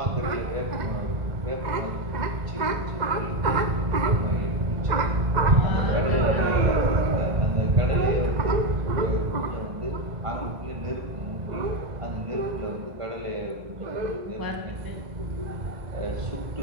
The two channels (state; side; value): late; left; 1.9 ms